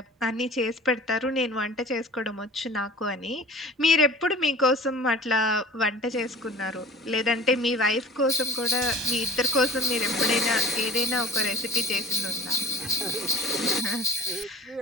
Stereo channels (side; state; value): both; normal; correlation 0.40